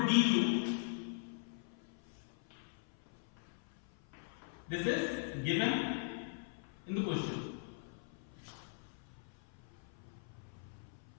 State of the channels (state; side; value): silent; right; 51 dB below the other